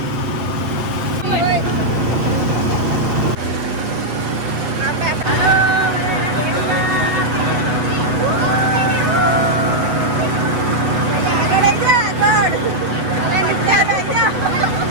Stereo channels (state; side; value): late; left; 8.1 ms